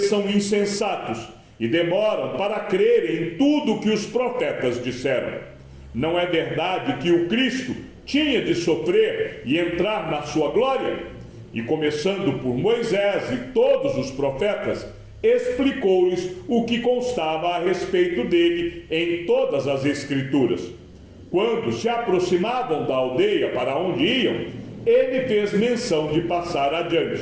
são insensatos e demoram para crer em tudo o que os profetas disseram. Não é verdade que o Cristo tinha de sofrer e entrar na sua glória? E começando por Moisés e todos os profetas, explicou-lhes o que constava a respeito dele em todas as Escrituras. Quando se aproximavam da aldeia para onde iam, ele fez menção de passar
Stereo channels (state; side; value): identical; both; correlation 1.00